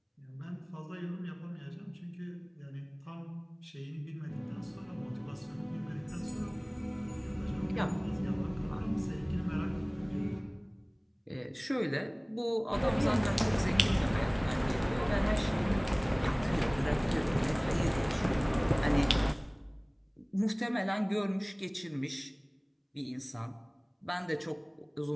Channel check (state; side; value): identical; both; correlation 1.00